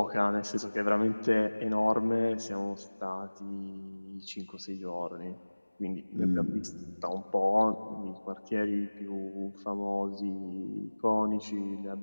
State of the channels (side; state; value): both; inverted; correlation -1.00